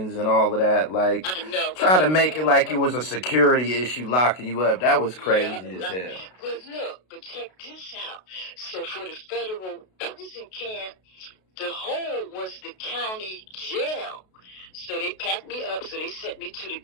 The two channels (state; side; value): late; right; 32 ms